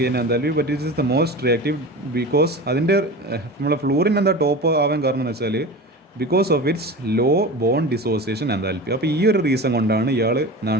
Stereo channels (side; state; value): both; normal; correlation 0.32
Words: enthalpy, but it is the most reactive because അതിൻ്റെ നമ്മളെ ഫ്ലൂറിൻ ടോപ്പ് ആവാൻ കാരണം എന്ന് വെച്ചാൽ because of its low bond dissociation enthalpy. അപ്പോൾ ഈ ഒരു റീസൺ കൊണ്ടാണ് ഇയാൾ